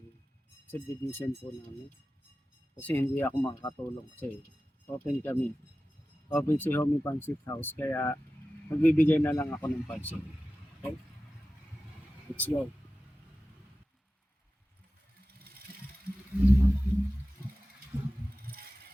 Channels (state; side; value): normal; both; correlation 0.95